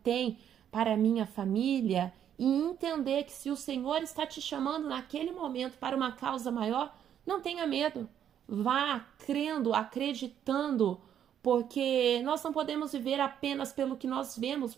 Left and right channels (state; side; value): quieter; left; 9.6 dB